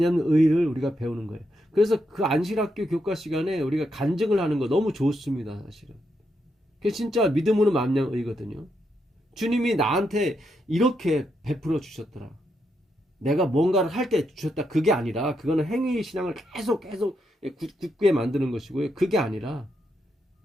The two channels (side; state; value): both; normal; correlation 0.81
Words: 의를 우리가 배우는 거예요. 그래서 그 안식일 학교 교과 시간에 우리가 간증을 하는 거 너무 좋습니다. 사실은. 그게 진짜 믿음으로 말미암는 의거든요. 주님이 나한테 이렇게 베풀어 주셨더라. 내가 뭔가를 할 때 주셨다. 그게 아니라 그거는 행위 신앙을 계속 굳게 만드는 것이고요. 그게 아니라